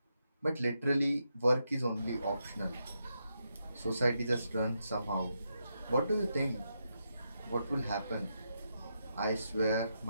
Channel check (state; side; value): inverted; both; correlation -0.83